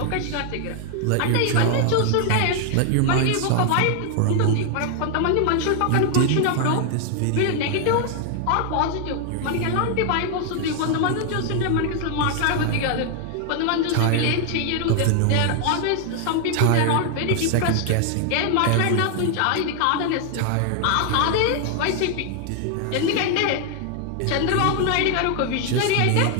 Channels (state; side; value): different; both; correlation 0.00